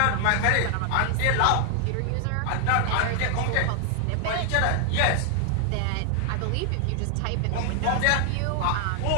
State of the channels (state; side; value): different; both; correlation 0.00